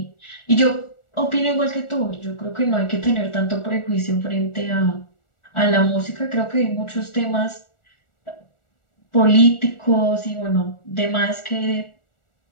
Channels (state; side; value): late; right; 1.4 ms